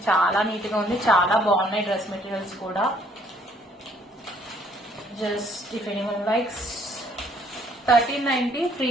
చాలా నీట్ గా ఉంది. చాలా బాగున్నాయి డ్రెస్ మెటీరియల్స్ కూడా. Just if anyone likes, 1390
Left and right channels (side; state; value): both; normal; correlation 0.63